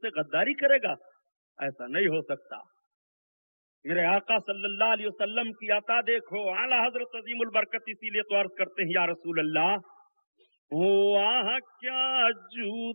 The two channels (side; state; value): both; inverted; correlation -1.00